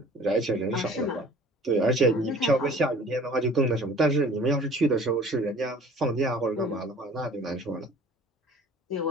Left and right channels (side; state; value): both; normal; correlation 0.49